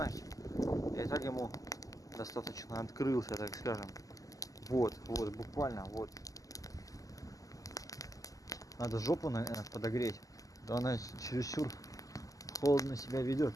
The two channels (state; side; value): late; right; 0.17 ms